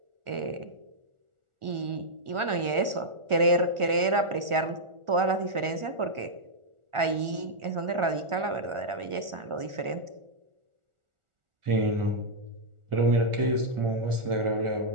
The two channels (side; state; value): left; late; 1.4 ms